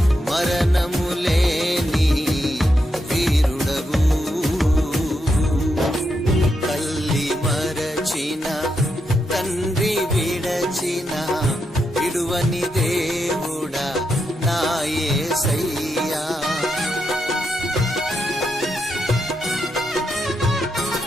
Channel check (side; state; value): both; normal; correlation 0.83